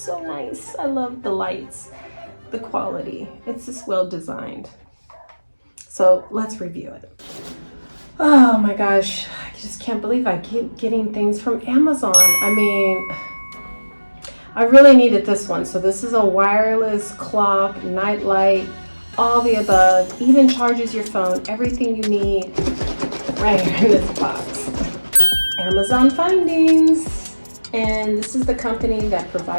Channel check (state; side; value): inverted; both; correlation -1.00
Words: nice. I love the lights, the quality. It's just well designed. So let's review it. Oh my gosh, I just can't believe I keep getting things from Amazon. I mean, I really needed this one. So this is a wireless clock, nightlight, all the above, even charges your phone, everything you need right here in this box. Amazon findings. And this is the company that